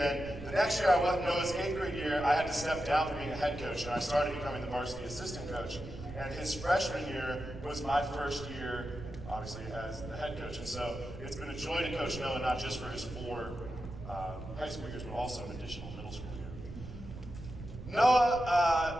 the next year, Noah's 8th grade year, I had to step down from being a head coach, and I started becoming the varsity assistant coach. And his freshman year was my first year, obviously, as the head coach. And so it's been a joy to coach Noah, not just for his 4 high school years, but also an additional middle school year.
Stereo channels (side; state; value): right; noise; rumble, 12 dB below the sound